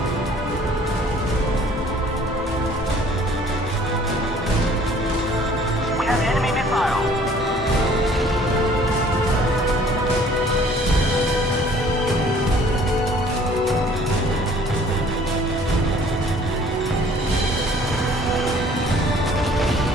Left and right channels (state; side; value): normal; both; correlation 0.55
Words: We have enemy missile.